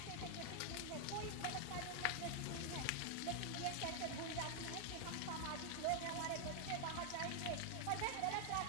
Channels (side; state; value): both; different; correlation 0.00